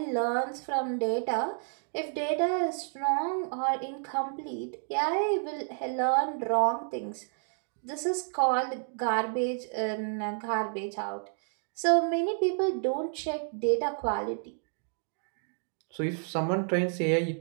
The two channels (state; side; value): silent; left; 58 dB below the other